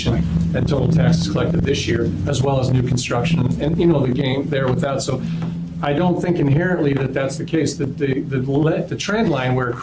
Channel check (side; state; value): both; identical; correlation 1.00